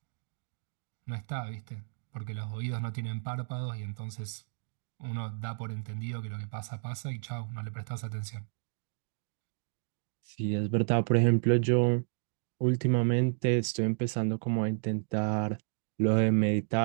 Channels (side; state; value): left; silent; digital silence